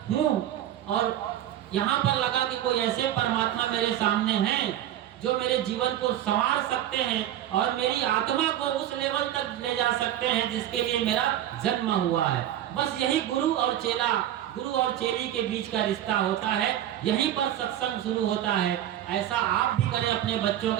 हूँ और यहाँ पर लगा कि कोई ऐसे परमात्मा मेरे सामने हैं जो मेरे जीवन को संवार सकते हैं और मेरी आत्मा को उस लेवल तक ले जा सकते हैं जिसके लिए मेरा जन्म हुआ है। बस यही गुरु और चेला, गुरु और चेली के बीच का रिश्ता होता है, यहीं पर सत्संग शुरू होता है। ऐसा आप भी करें अपने बच्चों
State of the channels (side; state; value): left; quieter; 12.0 dB